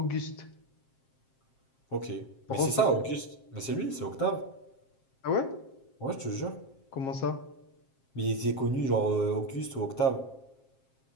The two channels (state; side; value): late; right; 7.5 ms